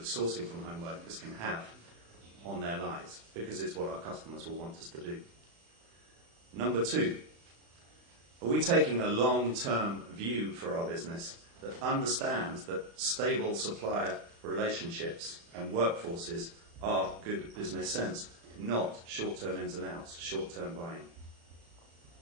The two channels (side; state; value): left; late; 35 ms